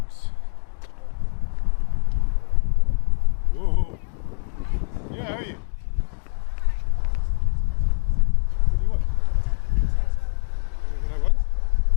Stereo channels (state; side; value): silent; right; digital silence